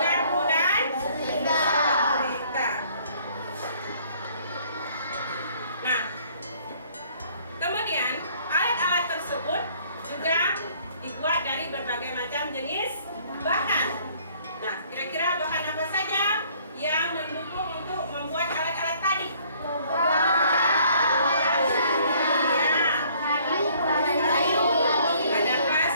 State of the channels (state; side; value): inverted; both; correlation -0.60